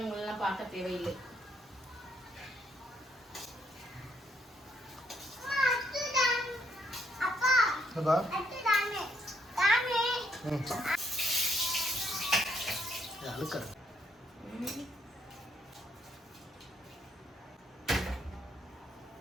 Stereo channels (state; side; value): normal; both; correlation 0.72